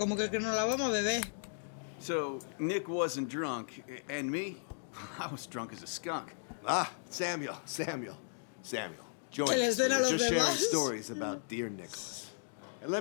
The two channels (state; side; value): silent; right; digital silence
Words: que no la vamos a beber. So, Nick wasn't drunk, and me? I was drunk as a skunk. Ah, Samuel. Join us. We were just sharing stories about dear Nicholas. And let